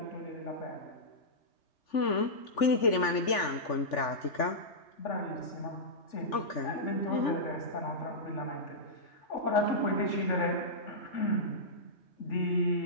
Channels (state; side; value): late; right; 3.4 ms